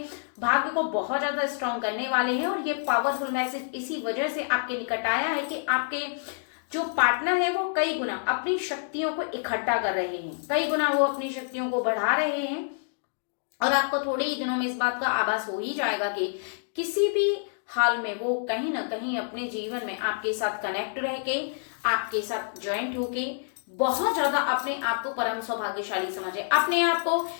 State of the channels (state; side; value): silent; right; digital silence